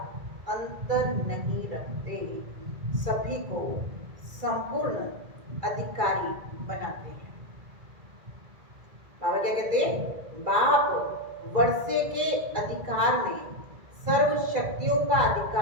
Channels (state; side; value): late; left; 2.0 ms